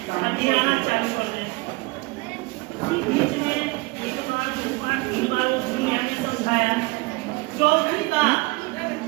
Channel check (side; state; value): left; quieter; 25.2 dB